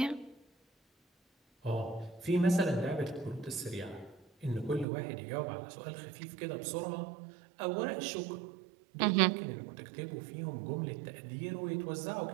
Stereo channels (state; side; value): drops out; left; at 4.9 s